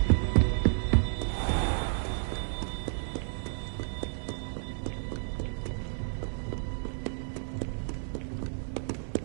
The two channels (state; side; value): silent; left; digital silence